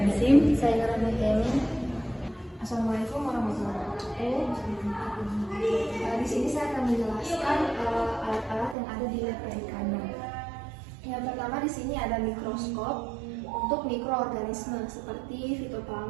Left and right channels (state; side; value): drops out; left; at 8.8 s